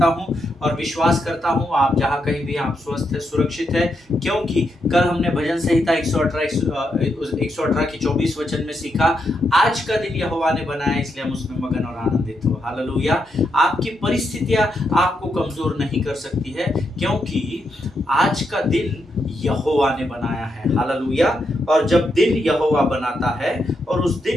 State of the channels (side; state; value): both; normal; correlation 0.82